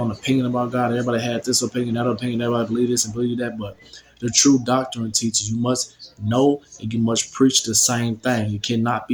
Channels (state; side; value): identical; both; correlation 1.00